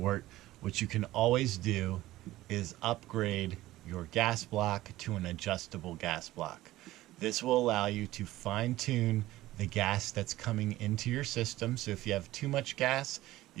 what you can always do is upgrade your gas block to an adjustable gas block. This will allow you to fine-tune the gas that's coming into your system. So if you have too much gas,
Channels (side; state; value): left; quieter; 16.3 dB